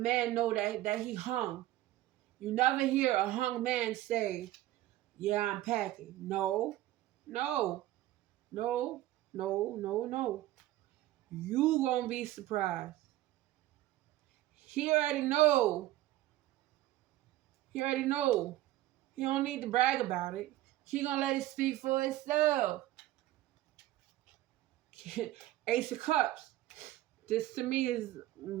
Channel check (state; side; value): quieter; left; 15.5 dB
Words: know that he hung. You never hear a hung man say, "Yeah, I'm packing." No, no, no, no, no, no. You gonna be surprised. He already know. He already know. He don't need to brag about it. He gonna let it speak for itself. Ace of Cups. This to me is